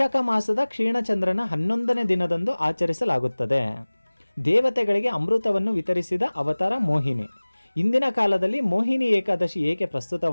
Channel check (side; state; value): both; inverted; correlation -1.00